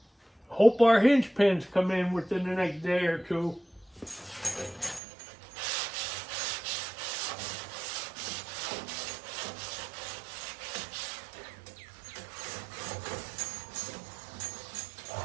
Hope our hinge pins come in within the next day or two.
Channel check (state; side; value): drops out; left; at 5.0 s